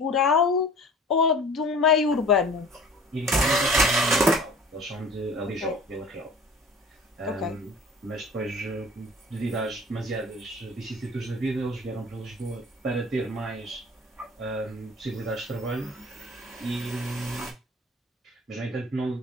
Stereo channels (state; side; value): normal; both; correlation 0.45